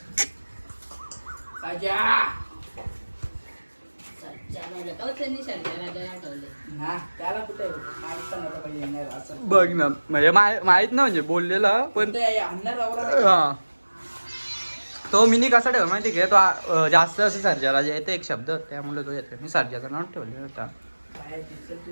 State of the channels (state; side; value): inverted; both; correlation -1.00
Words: राजा त्याला कुठे बघ ना म्हणजे माहित ना म्हणजे बोललेला पण हा तो मिनी कसा ठेव माहिती का तो जास्त असं सर्जाला जे येते एक शब्द त्यामुळे तो येते. मी सर्जाचं नाव ठेवले होता.